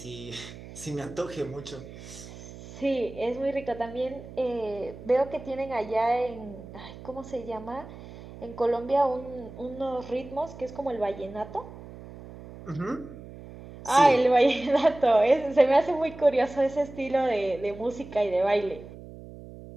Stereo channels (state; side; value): noise; right; hum, 15 dB below the sound